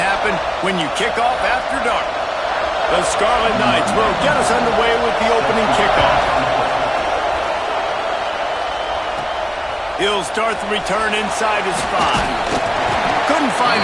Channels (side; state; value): both; identical; correlation 1.00